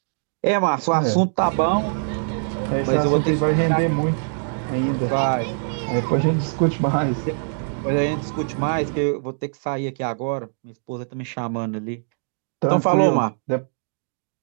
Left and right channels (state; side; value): silent; left; digital silence